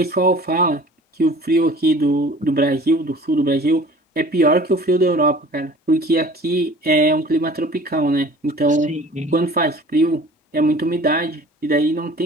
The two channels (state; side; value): normal; both; correlation 0.46